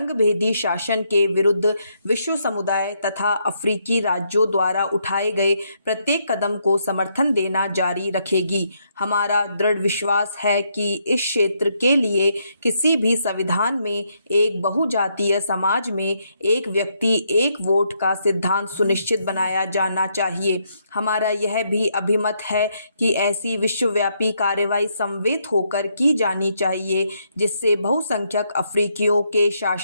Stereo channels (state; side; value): inverted; both; correlation -0.76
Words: शासन के विरुद्ध विश्व समुदाय तथा अफ्रीकी राज्यों द्वारा उठाए गए प्रत्येक कदम को समर्थन देना जारी रखेगी। हमारा दृढ़ विश्वास है कि इस क्षेत्र के लिए किसी भी संविधान में एक बहुजातीय समाज में एक व्यक्ति एक वोट का सिद्धांत सुनिश्चित बनाया जाना चाहिए। हमारा यह भी अभिमत है कि ऐसी विश्वव्यापी कार्रवाई समवेत होकर की जानी चाहिए जिससे बहुसंख्यक अफ्रीकियों के